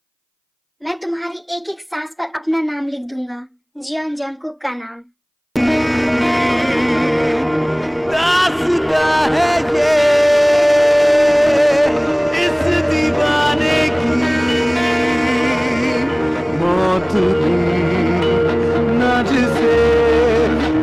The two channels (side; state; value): both; identical; correlation 1.00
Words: मैं तुम्हारी एक एक सांस पर अपना नाम लिख दूंगा, जियोन जंकुक का नाम। दास्ता है ये इस दीवाने की, मौत भी न जिसे